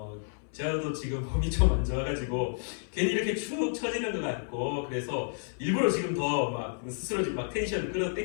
저도 지금 몸이 좀 안 좋아가지고 괜히 이렇게 축 처지는 것 같고 그래서 일부러 지금 더 막 스스로 지금 막 텐션을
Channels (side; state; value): right; silent; 57 dB below the other